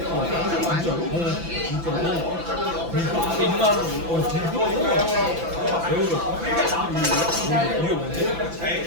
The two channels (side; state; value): left; late; 5.9 ms